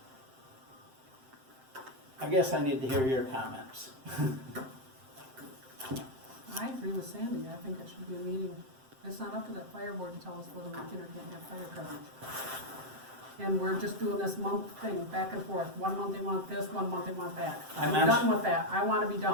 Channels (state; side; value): late; left; 7.7 ms